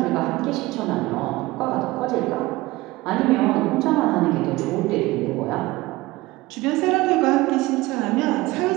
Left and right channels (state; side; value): quieter; left; 19.7 dB